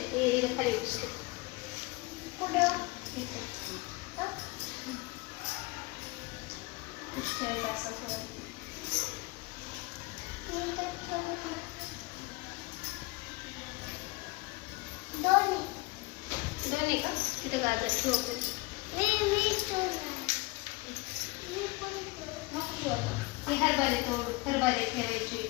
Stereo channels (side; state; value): right; quieter; 24.3 dB